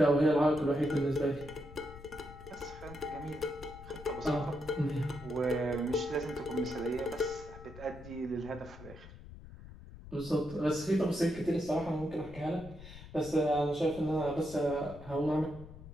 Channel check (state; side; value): noise; left; rumble, 16 dB below the sound